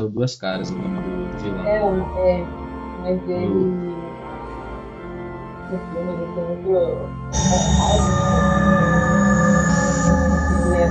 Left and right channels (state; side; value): identical; both; correlation 1.00